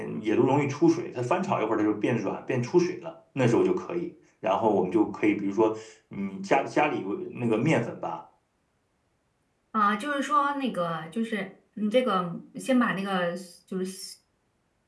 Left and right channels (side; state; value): both; identical; correlation 1.00